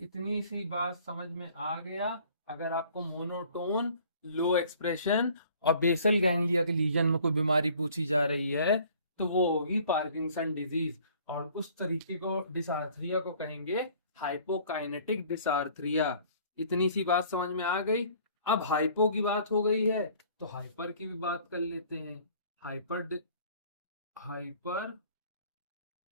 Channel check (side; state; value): both; inverted; correlation -0.54